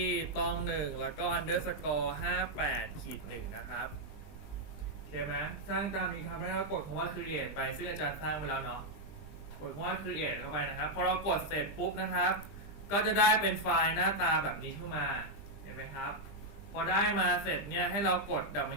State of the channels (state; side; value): late; right; 20 ms